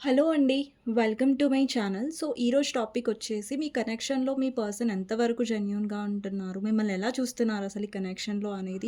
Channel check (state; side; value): identical; both; correlation 1.00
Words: హలో అండి. Welcome to my channel. So, ఈరోజు టాపిక్ వచ్చేసి మీ కనెక్షన్‌లో మీ పర్సన్ ఎంతవరకు జెన్యూన్‌గా ఉంటున్నారు? మిమ్మల్ని ఎలా చూస్తున్నారు అసలు ఈ కనెక్షన్‌లో అనేది